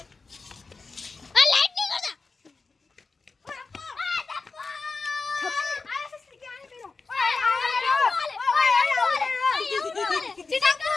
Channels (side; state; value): right; quieter; 4.2 dB